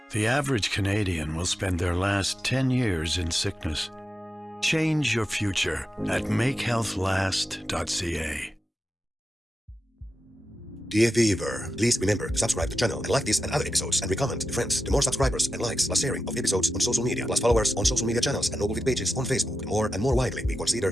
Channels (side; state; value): both; normal; correlation 0.90